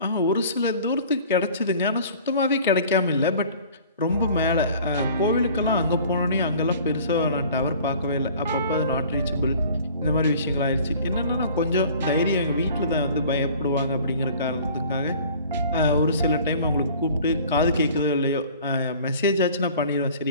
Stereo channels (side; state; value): both; inverted; correlation -0.48